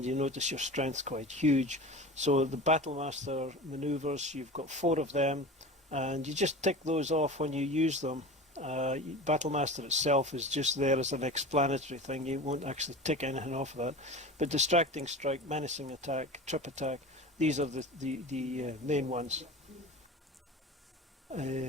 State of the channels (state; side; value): normal; both; correlation 0.33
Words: you notice your strength's quite huge. So the Battlemaster maneuvers, you've got 4 of them, and you just tick those off when you use them. Battlemaster itself is just there as an explanatory thing. You won't actually tick anything off of that. But Distracting Strike, Menacing Attack, Trip Attack, these are the main ones.